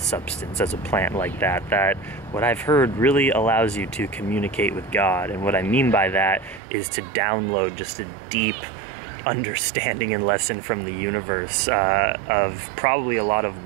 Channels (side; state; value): left; drops out; at 6.6 s